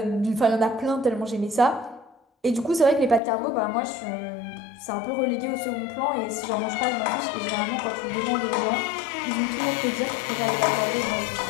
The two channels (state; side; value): drops out; right; at 3.2 s